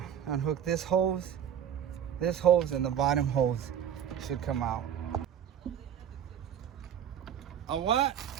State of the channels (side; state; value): left; quieter; 9.3 dB